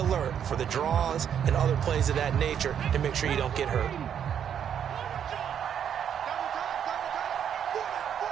for the draws and other plays of that nature to make sure you don't get hurt.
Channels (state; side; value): quieter; left; 8.7 dB